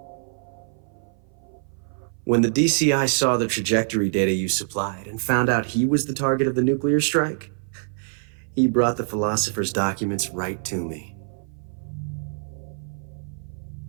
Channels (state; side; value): silent; left; 58 dB below the other